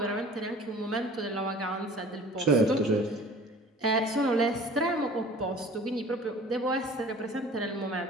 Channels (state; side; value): normal; both; correlation 0.46